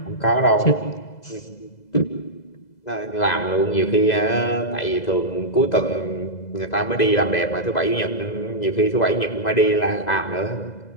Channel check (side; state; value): right; late; 2.0 ms